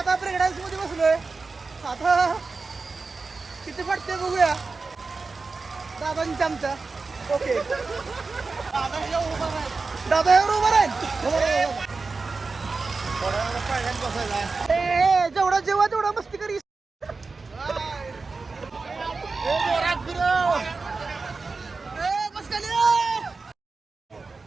प्रेग्नन्सी मध्ये बसलोय. आता किती पडते बघूया दादांच्या आमच्या. ओके दादा एवढं उभं राहील. जेवढा जेव्हा तेवढा मस्ती करी.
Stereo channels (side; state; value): left; quieter; 4.1 dB